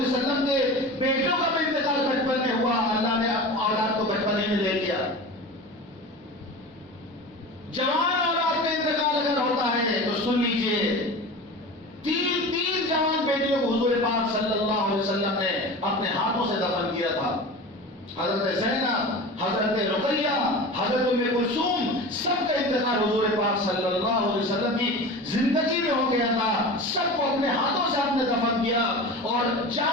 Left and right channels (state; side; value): normal; both; correlation 0.32